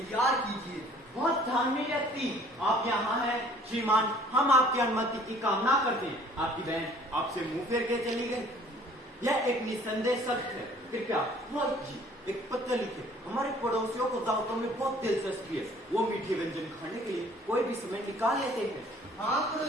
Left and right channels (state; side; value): normal; both; correlation 0.55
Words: कीजिए। बहुत धार्मिक व्यक्ति आप यहाँ हैं श्रीमान। हम आपकी अनुमति की कामना करते हैं। आपकी बहन आपसे मुंह फेर के चली गई, यह एक निसंदेह सत्य है। कृपया पुरोहित जी एक पत्र लिखे। हमारे पड़ोसियों को दावतों में बहुत दिलचस्पी है। वो मीठे व्यंजन खाने के लिए कोई भी समय निकाल लेते हैं। हाँ